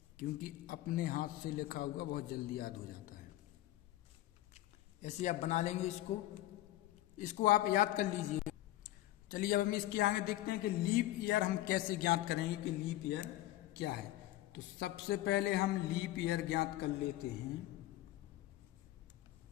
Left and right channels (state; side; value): quieter; right; 15.2 dB